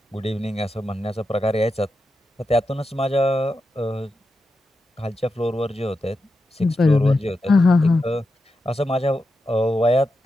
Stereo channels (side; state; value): both; normal; correlation 0.88